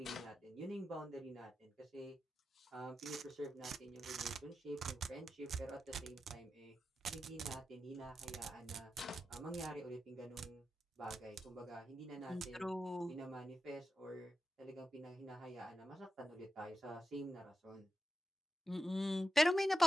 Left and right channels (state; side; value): normal; both; correlation 0.90